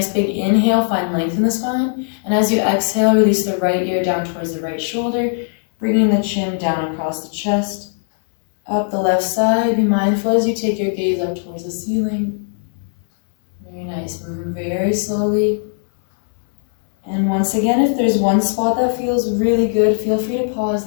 big inhale, find length in the spine. And as you exhale, release the right ear down towards the right shoulder, bringing the chin down across the chest. Up the left side, be mindful as you take your gaze up towards the ceiling. Very nice, moving very slowly. And once again, if there's one spot that feels really good, feel free to pause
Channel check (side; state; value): right; silent; digital silence